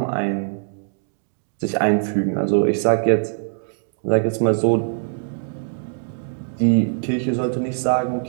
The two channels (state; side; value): silent; left; digital silence